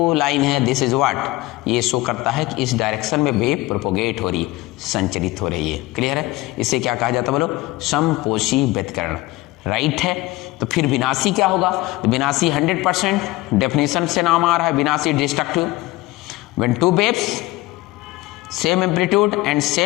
लाइन है दिस इज व्हाट, ये शो करता है कि इस डायरेक्शन में वेव प्रोपोगेट हो रही है, संचरित हो रही है, क्लियर है। इसे क्या कहा जाता है बोलो, समपोषी व्यतिकरण, राइट है। तो फिर विनाशी क्या होगा, तो विनाशी 100% डेफिनेशन से नाम आ रहा है, विनाशी destructive. When two waves same amplitude and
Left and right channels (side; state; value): right; quieter; 19.5 dB